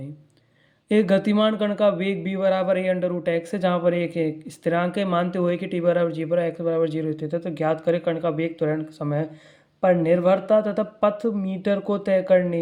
एक गतिमान कण का वेग b बराबर a अंडर रूट एक्स है, जहाँ पर एक स्थिरांक है, मानते हुए कि t बराबर g पर x बराबर 0 स्थित है। तो ज्ञात करें कण का वेग त्वरण समय पर निर्भरता तथा पथ मीटर को तय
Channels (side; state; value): both; identical; correlation 1.00